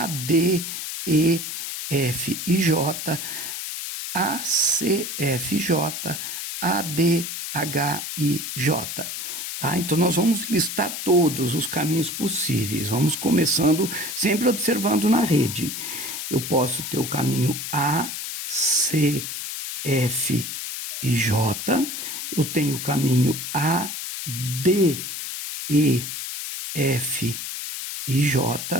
D, E, F e J, A, C, F, J, A, D, H, I, J. Tá? Então, nós vamos listar todos os caminhos possíveis. Vamos começando sempre observando na rede. Eu posso ter o caminho A, C, F e J. Eu tenho o caminho A, D, E, F e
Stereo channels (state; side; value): noise; left; hiss, 6 dB below the sound